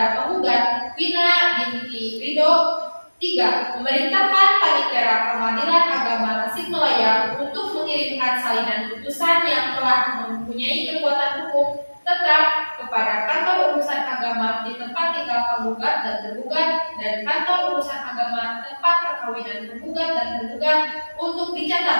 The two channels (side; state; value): both; inverted; correlation -1.00